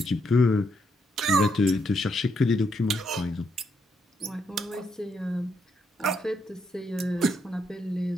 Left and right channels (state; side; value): normal; both; correlation 0.77